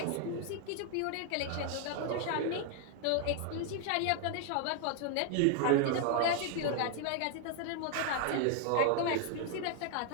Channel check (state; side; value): different; both; correlation 0.00